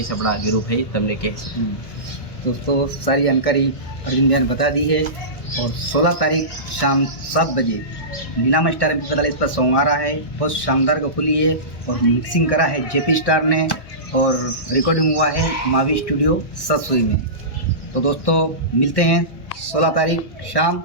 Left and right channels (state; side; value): late; right; 1.3 ms